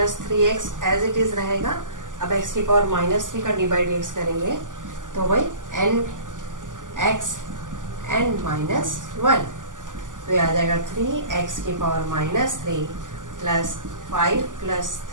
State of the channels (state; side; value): late; left; 0.88 ms